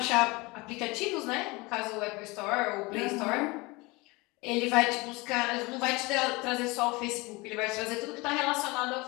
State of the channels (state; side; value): quieter; right; 24.3 dB